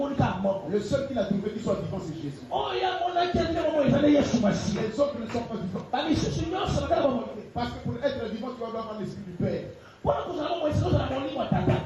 Le seul qu'il a trouvé qui soit vivant, c'est Jésus. Les autres ne sont pas vivants. Parce que pour être vivant, tu dois avoir l'esprit du Père.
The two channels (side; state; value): both; identical; correlation 1.00